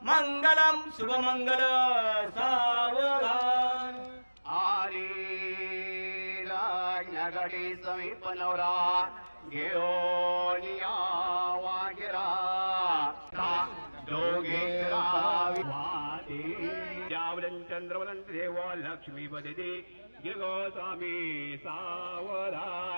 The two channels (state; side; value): inverted; both; correlation -1.00